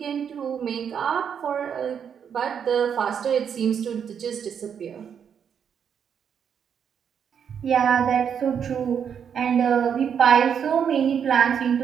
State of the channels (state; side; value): quieter; left; 7.7 dB